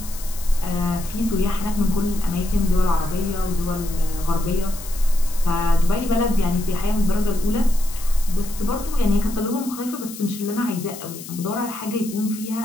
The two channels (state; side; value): noise; left; hiss, 14 dB below the sound